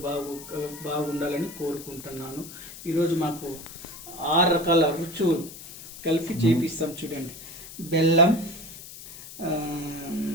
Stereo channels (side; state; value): left; noise; hiss, 14 dB below the sound